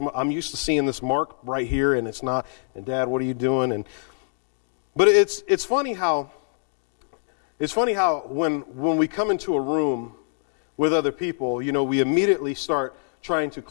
I'm used to seeing this mark right here, and it's not. And Dad, what are you doing? But it's funny how when we come into a room with other people, we immediately start trying to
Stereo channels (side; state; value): right; silent; digital silence